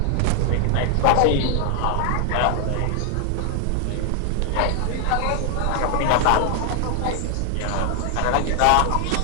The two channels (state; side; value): different; both; correlation 0.00